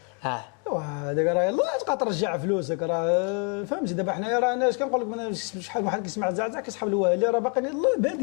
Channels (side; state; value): right; quieter; 38.3 dB